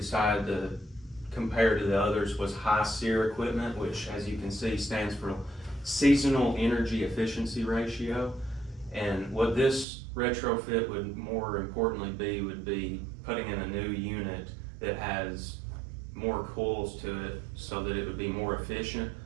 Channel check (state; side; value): drops out; left; at 9.9 s